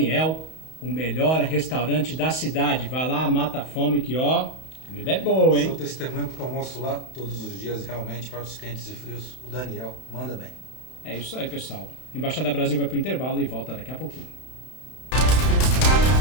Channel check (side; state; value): right; late; 31 ms